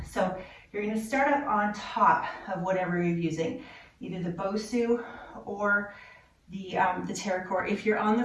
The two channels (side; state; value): both; identical; correlation 1.00